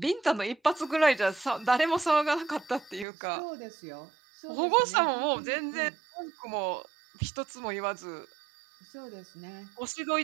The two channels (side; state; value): left; drops out; at 3.1 s